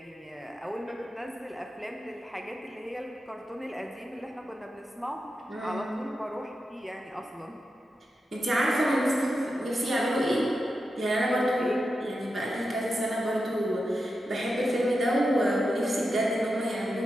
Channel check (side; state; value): both; normal; correlation 0.89